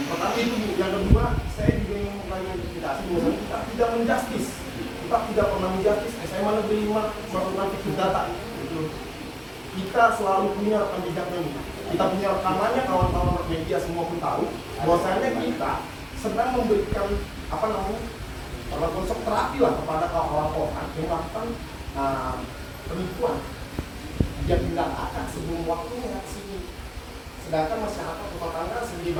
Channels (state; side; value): identical; both; correlation 1.00